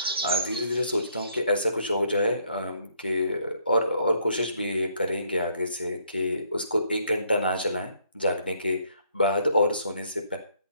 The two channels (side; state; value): both; inverted; correlation -0.69